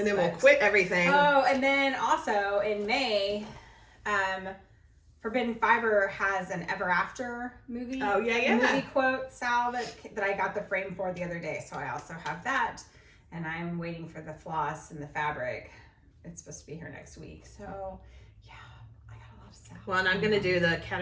then we'll but- quit everything. Oh, and then also in May, Forbidden Fiber has an Ever After movie. Oh, yeah. Movie quote, Sal, that I got the frame for the other day. So I also have that. And I'm waiting for the floss and the fabric. It's supposed to be here next week. So, yeah, I got a lot of Sal. Well, and I'm going to do the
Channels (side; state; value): both; identical; correlation 1.00